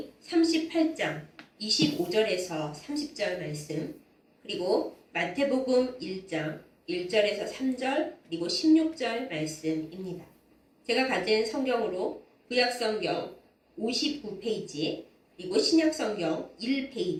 38장 25절에서 30절 말씀, 그리고 마태복음 1장 1절에서 3절, 그리고 16절 말씀입니다. 제가 가진 성경으로 구약성경 59페이지, 그리고 신약성경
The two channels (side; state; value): both; identical; correlation 1.00